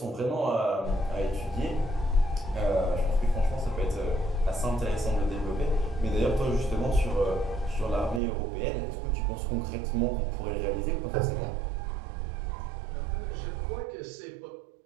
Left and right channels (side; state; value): left; drops out; at 8.2 s